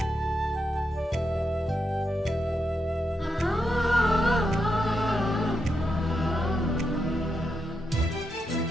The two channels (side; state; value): both; normal; correlation 0.84